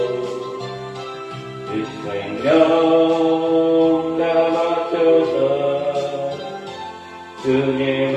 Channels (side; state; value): both; identical; correlation 1.00